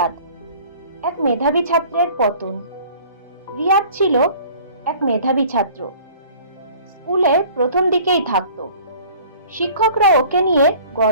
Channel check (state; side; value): inverted; both; correlation -0.49